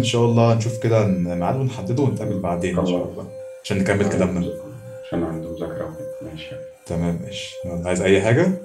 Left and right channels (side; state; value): both; identical; correlation 1.00